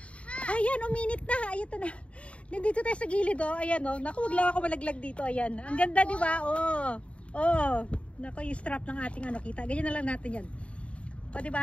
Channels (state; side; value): late; right; 0.062 ms